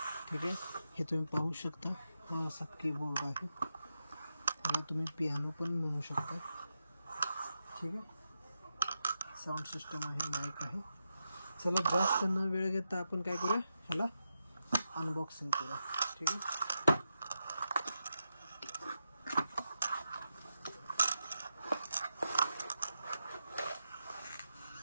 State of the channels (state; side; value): inverted; both; correlation -0.87